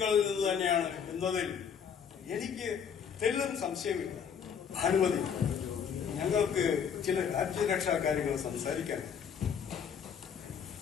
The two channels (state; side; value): quieter; right; 7.4 dB